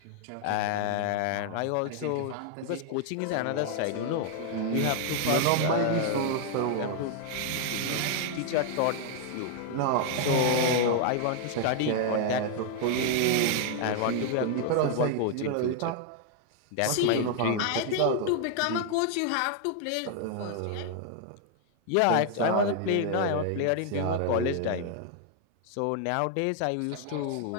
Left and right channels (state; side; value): different; both; correlation 0.00